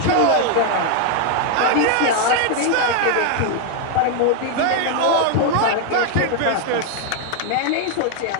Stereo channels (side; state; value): both; different; correlation 0.00